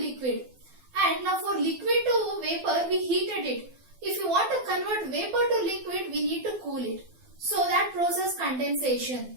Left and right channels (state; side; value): late; left; 12 ms